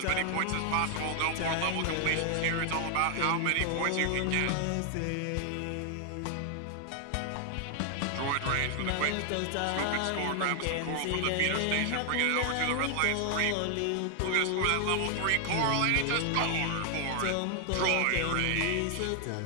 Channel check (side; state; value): both; different; correlation 0.00